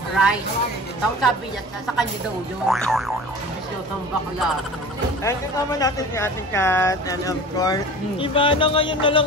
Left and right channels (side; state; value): both; normal; correlation 0.39